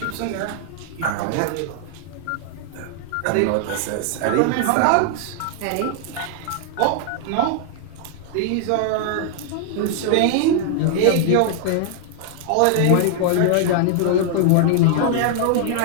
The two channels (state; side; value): different; both; correlation 0.00